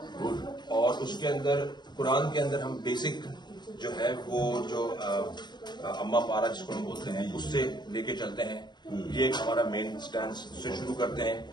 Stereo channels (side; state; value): right; late; 0.21 ms